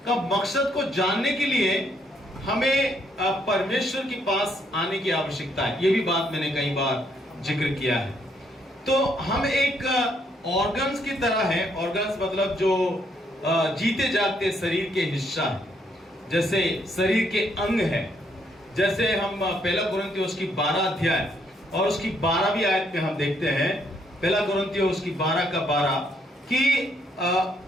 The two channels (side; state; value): both; normal; correlation 0.72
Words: का मकसद को जानने के लिए हमें परमेश्वर के पास आने की आवश्यकता है। ये भी बात मैंने कई बार जिक्र किया है। तो हम एक ऑर्गन्स की तरह है। ऑर्गन्स मतलब जो जीते जागते शरीर के हिस्सा है, जैसे शरीर के अंग है। जैसे हम पहला कुरिन्थियों उसकी 12 अध्याय और उसकी 12वीं आयत में हम देखते हैं, पहला कुरिन्थियों उसकी 12 का 12 कि